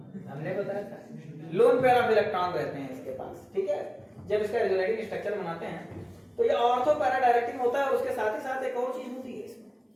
हमने बताया था। लोन पेयर ऑफ इलेक्ट्रॉन रहते हैं इसके पास, ठीक है। जब इसका रेजोनेटिंग स्ट्रक्चर बनाते हैं तो ये ऑर्थो पैरा डायरेक्टिंग होता है, और उसके साथ ही साथ एक और चीज होती है इसमें,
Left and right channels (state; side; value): identical; both; correlation 1.00